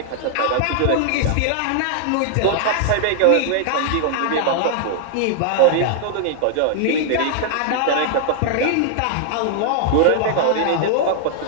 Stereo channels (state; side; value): different; both; correlation -0.01